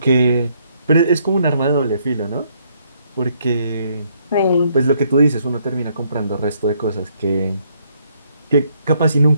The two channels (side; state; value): both; inverted; correlation -0.70